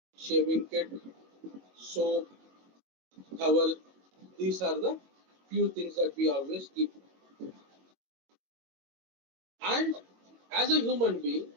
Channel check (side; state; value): left; late; 22 ms